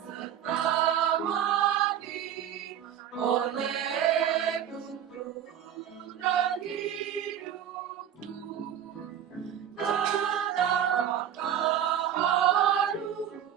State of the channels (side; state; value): left; quieter; 9.8 dB